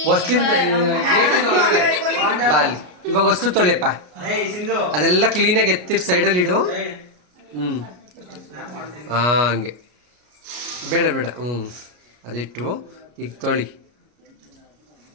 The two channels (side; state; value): left; late; 33 ms